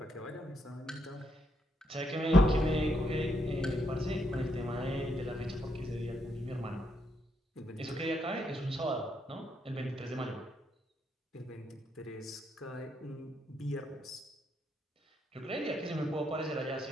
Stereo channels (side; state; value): both; normal; correlation 0.77